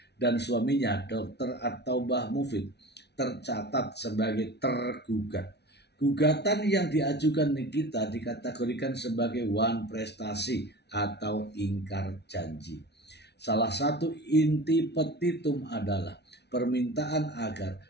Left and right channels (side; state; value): right; late; 0.49 ms